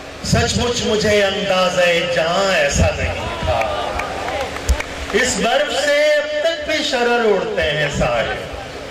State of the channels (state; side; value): identical; both; correlation 1.00